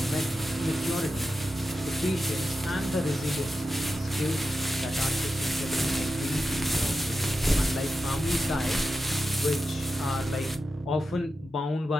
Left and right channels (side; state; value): both; normal; correlation 0.90